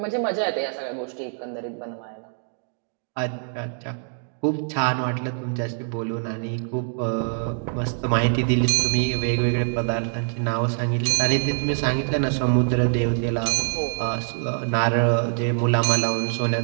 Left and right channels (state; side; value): silent; left; digital silence